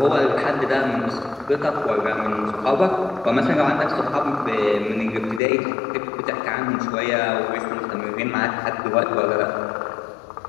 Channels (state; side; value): drops out; right; at 5.4 s